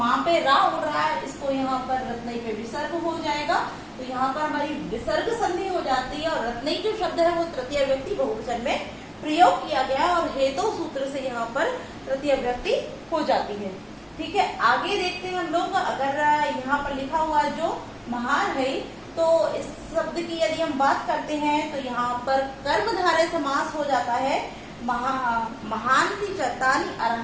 पे रा उड़ रहा है इसको यहाँ पर रत्नई पे विसर्ग हो जाएगा, तो यहाँ पर हमारी विसर्ग संधि हो जाती है। और रत्नई जो शब्द है वो तृतीय व्यक्ति बहुवचन में प्रयोग किया गया और हेतु सूत्र से यहाँ पर तृतीय व्यक्ति हो जाती है। ठीक है, आगे देखते हैं हम लोग। अगर यहाँ पर लिखा हुआ जो महान है, तो इस शब्द की यदि हम बात करते हैं तो यहाँ पर कर्मधारय समास हो जाता है। महांति चतानि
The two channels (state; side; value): identical; both; correlation 1.00